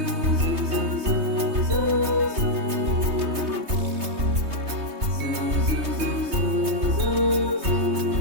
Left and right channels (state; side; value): late; left; 3.2 ms